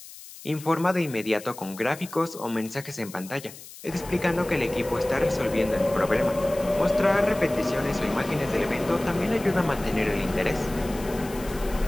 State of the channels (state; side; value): noise; left; hiss, 16 dB below the sound